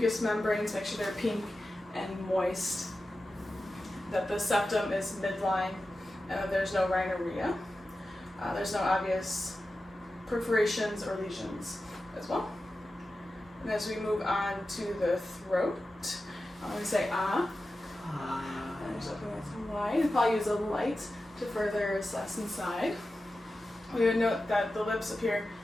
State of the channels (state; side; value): normal; both; correlation 0.93